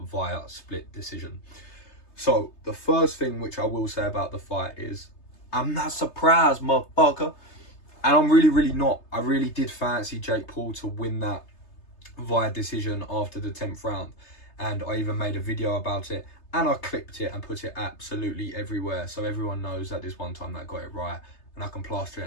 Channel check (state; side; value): late; right; 3.3 ms